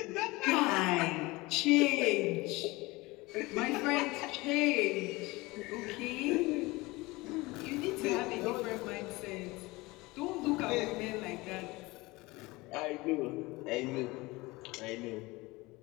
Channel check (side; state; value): right; quieter; 22.1 dB